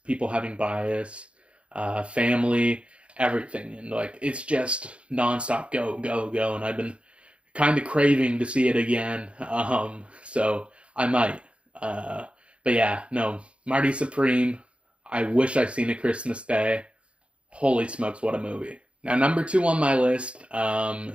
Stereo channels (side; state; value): left; late; 0.059 ms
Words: people having bias, family, everything, and like it's just nonstop go, and I've been kind of craving to see it again. So I might. But yeah, no, Marty Supreme. I wish I'd seen a Christmas Day. Holy smokes, what a movie! Now, number two on my list